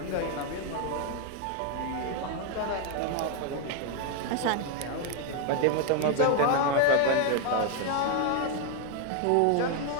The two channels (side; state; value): both; different; correlation 0.01